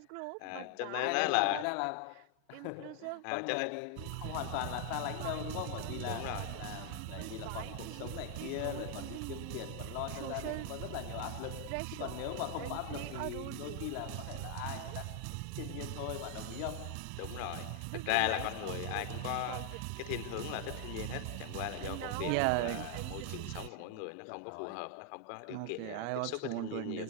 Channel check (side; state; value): both; different; correlation 0.00